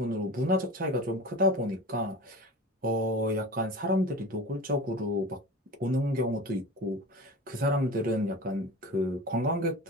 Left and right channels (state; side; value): normal; both; correlation 0.34